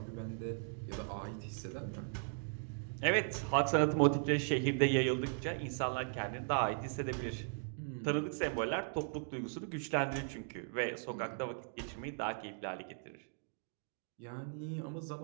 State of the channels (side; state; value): left; silent; digital silence